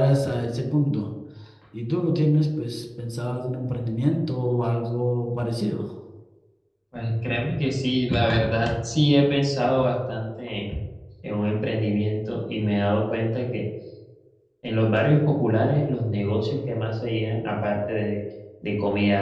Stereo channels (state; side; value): identical; both; correlation 1.00